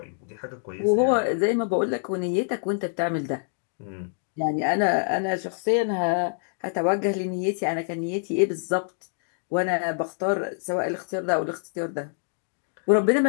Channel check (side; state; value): right; silent; 61 dB below the other